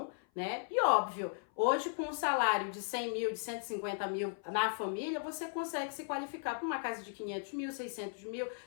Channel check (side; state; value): right; silent; 53 dB below the other